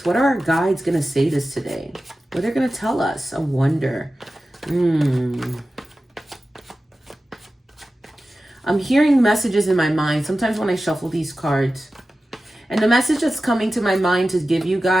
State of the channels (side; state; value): both; normal; correlation 0.94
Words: What are our guides going to say this today? What are they going to tell us? I wonder. I'm hearing messages in my mind sometimes when I shuffle these cards. And the message that's coming to my mind to give you